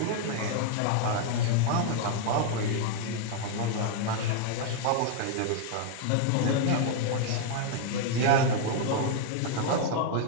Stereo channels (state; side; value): different; both; correlation 0.00